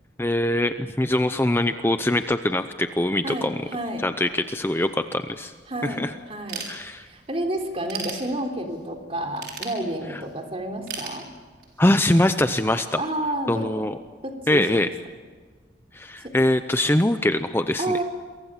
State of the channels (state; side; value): normal; both; correlation 0.67